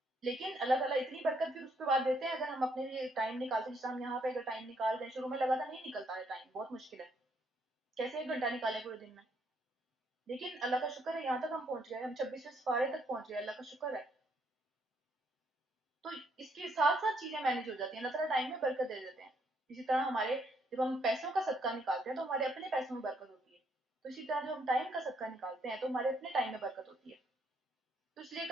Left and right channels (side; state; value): both; normal; correlation 0.72